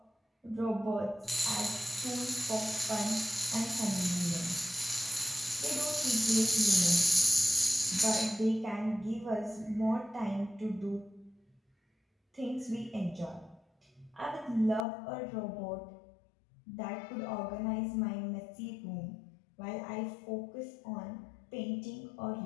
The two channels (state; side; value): drops out; right; at 14.9 s